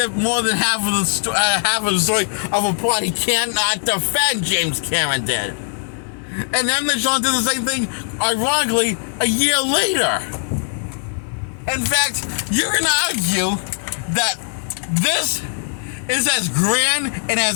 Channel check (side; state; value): right; silent; digital silence